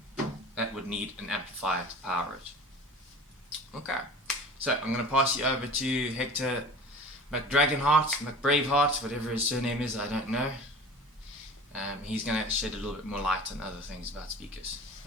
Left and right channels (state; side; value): normal; both; correlation 0.40